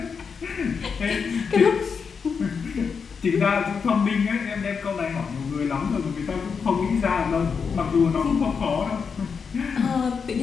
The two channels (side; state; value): right; quieter; 5.9 dB